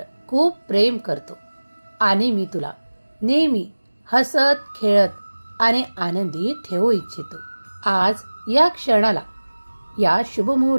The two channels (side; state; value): both; inverted; correlation -1.00